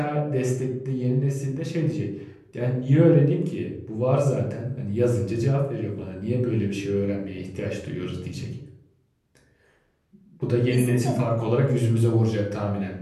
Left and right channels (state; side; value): identical; both; correlation 1.00